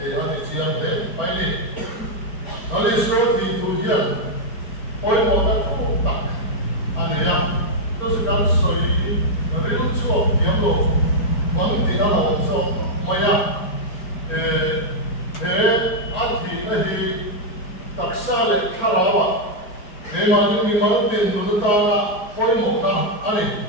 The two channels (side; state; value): right; late; 4.8 ms